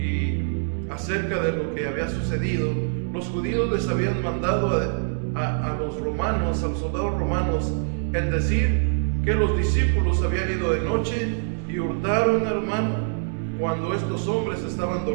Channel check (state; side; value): silent; left; digital silence